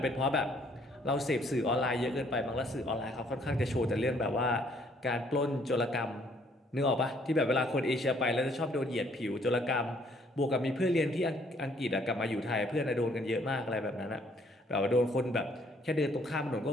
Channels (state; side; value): normal; both; correlation 0.64